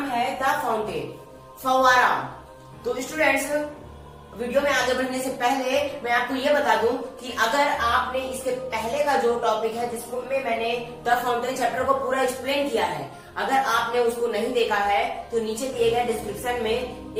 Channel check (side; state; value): both; identical; correlation 1.00